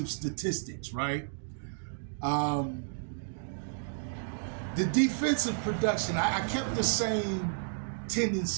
statistics, right? The defensive production, I kept the same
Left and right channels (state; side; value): silent; left; digital silence